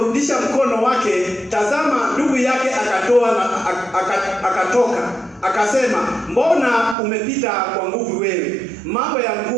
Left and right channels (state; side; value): drops out; left; at 7.0 s